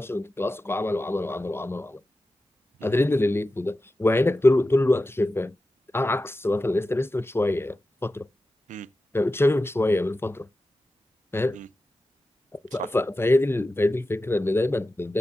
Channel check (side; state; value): both; normal; correlation 0.93